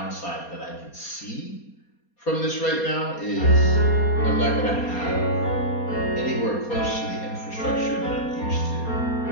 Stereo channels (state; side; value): late; right; 4.2 ms